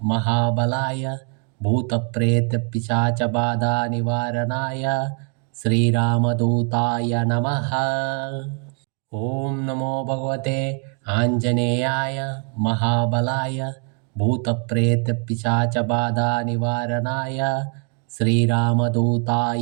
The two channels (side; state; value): left; quieter; 38.3 dB